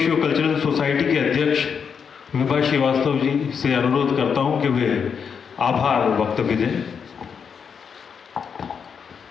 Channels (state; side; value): quieter; right; 6.6 dB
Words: कल्चरल सोसाइटी के अध्यक्ष विभा श्रीवास्तव जी से अनुरोध करता हूं कि वे आभार वक्तव्य दें।